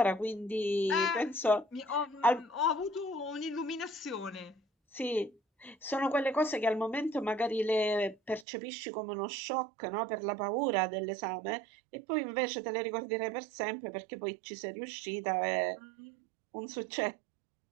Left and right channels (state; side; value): drops out; left; at 8.5 s